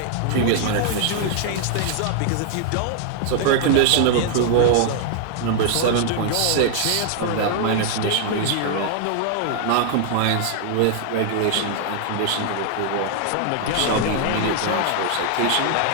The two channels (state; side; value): different; both; correlation 0.00